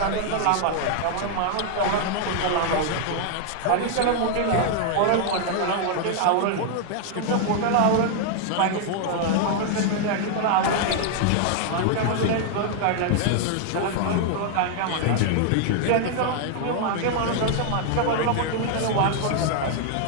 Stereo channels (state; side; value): different; both; correlation 0.00